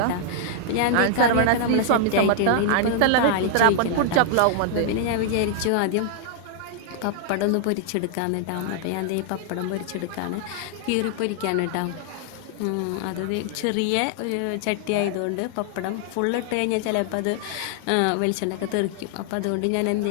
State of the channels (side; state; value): both; different; correlation 0.00